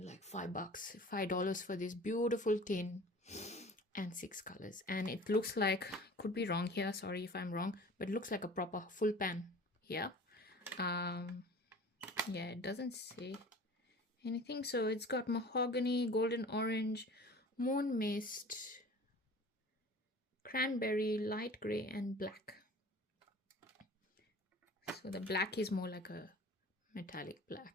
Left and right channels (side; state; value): both; normal; correlation 0.43